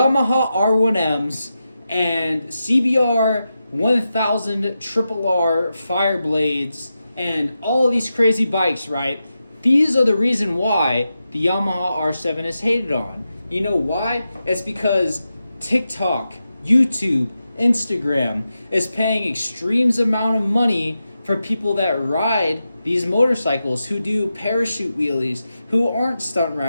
R1Ms, and CBR 1000 Triple R Fireblades, and all of these crazy bikes, right? These are the reason why the Yamaha R7 is hated on. You know why? It's because TikTok, YouTube, Instagram is paying extremes amount of money for people that ride these motorcycles, who do parachute wheelies, who aren't stunt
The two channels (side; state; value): both; inverted; correlation -0.90